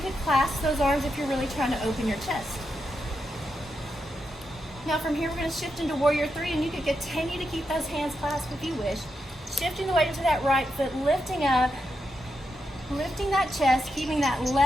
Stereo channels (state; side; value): normal; both; correlation 0.85